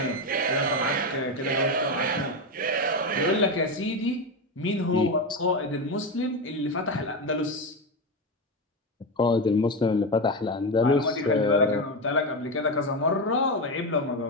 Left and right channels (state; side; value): normal; both; correlation 0.15